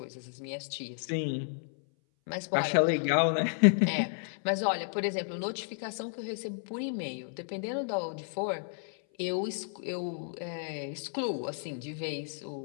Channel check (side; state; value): right; silent; 56 dB below the other